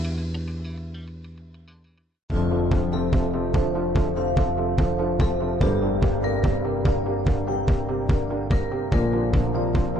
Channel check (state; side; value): normal; both; correlation 0.72